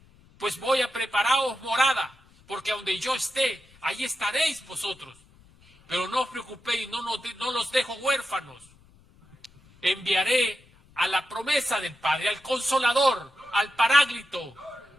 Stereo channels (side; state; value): left; noise; rumble, 28 dB below the sound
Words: pues voy a prepararos morada, porque donde yo esté, ahí estaréis vosotros. Pero no os preocupéis, no los dejo huérfanos. Enviaré a la promesa del Padre, al Consolador, al Paráclito,